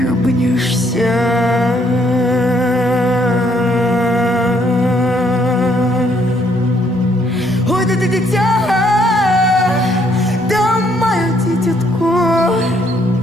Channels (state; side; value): normal; both; correlation 0.68